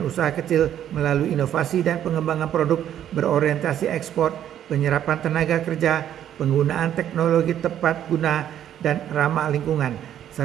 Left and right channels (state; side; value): quieter; left; 10.6 dB